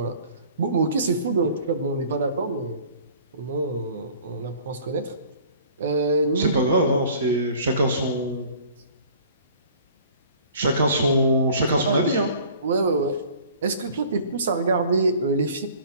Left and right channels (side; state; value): both; inverted; correlation -0.50